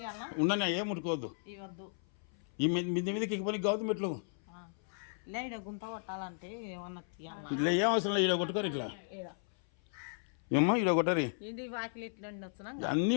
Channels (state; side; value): silent; right; 54 dB below the other